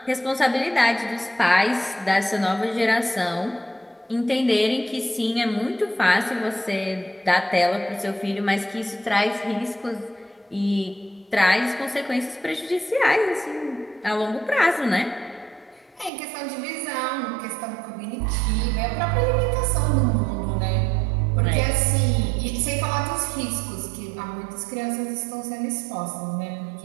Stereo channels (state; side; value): drops out; left; at 16.1 s